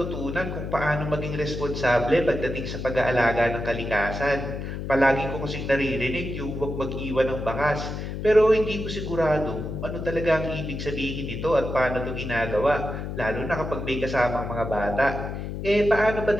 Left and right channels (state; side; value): noise; left; hum, 6 dB below the sound